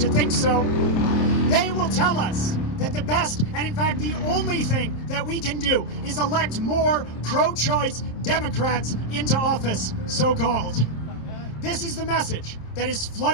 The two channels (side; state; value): right; late; 27 ms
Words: think so. They will tell us that the best, and in fact the only thing that we can do is elect more pro-choice Democrats into office, so-called. This is the message that has